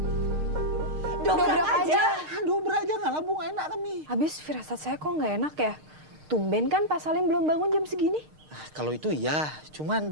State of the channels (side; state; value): left; late; 6.5 ms